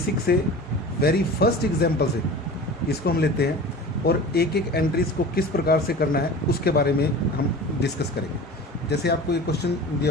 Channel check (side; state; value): both; normal; correlation 0.37